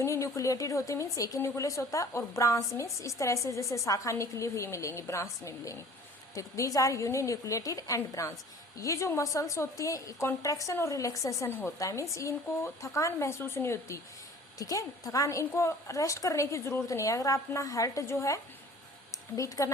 होती है। मीन्स एक ही न्यूक्लियस होता है। और ब्रांच मीन्स इस तरह से जैसे शाखा निकली हुई मिलेंगी, ब्रांच में मिलेंगी। ठीक, these are uninucleated and branch. ये जो मसल्स होती हैं कॉन्ट्रैक्शन और रिलैक्सेशन होता है। मीन्स इनको थकान महसूस नहीं होती। ठीक है, थकान, इनको रेस्ट करने की जरूरत नहीं है। अगर अपना हार्ट जो है बीट करना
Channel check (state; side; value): normal; both; correlation 0.47